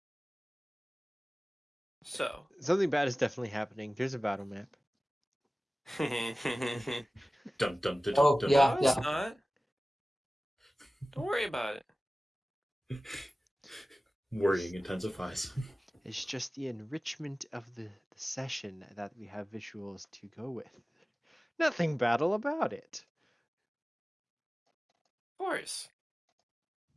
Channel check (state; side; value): normal; both; correlation 0.97